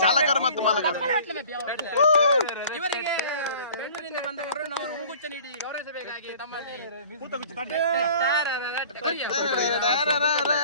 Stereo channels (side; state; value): both; inverted; correlation -0.47